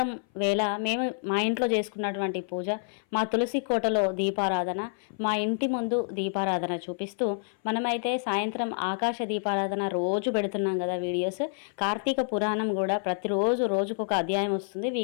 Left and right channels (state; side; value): silent; right; 57 dB below the other